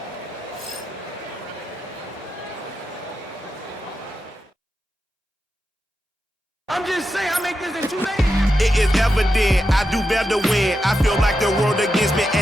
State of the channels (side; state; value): both; normal; correlation 0.88